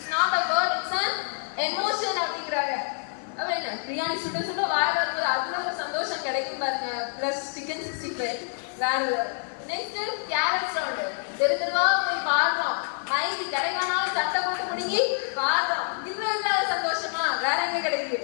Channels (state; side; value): silent; right; digital silence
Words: not a word, it's an emotion அப்படிங்கிறாங்க. அப்ப என்ன, பிரியாணி சுட சுட வாய வரும்போது அதுல ஒரு சந்தோஷம் கிடைக்கும் பாருங்க. பிளஸ் சிக்கன் 65 வேற. நெக்ஸ்ட் கேரட் சவுண்ட், தெருவா போய் பாடுறோம், மைக்கு கிடைக்கானாலும் சட்டை போட்டு முடிங்கி பாடுறோம். இதுல இல்லாத சந்தோஷமா வேற எங்க கிடைக்குது?